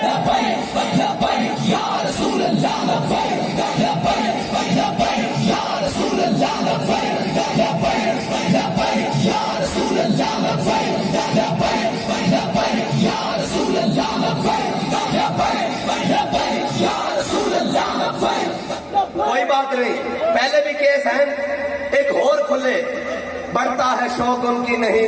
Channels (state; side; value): identical; both; correlation 1.00